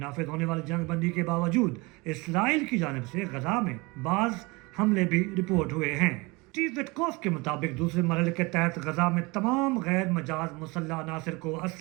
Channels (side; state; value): left; quieter; 25.4 dB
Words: होने वाली जंगबंदी के बावजूद इसराइल की जानिब से गजा में बाज़ हमले भी रिपोर्ट हुए हैं। स्टीव विटकॉफ के मुताबिक दूसरे मरहले के तहत गजा में तमाम गैर मजाज मुसल्लह अनासर को